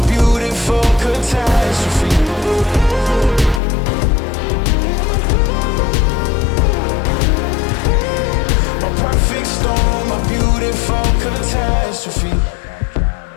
beautiful catastrophe. My perfect storm, my beautiful catastrophe.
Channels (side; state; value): right; drops out; at 3.6 s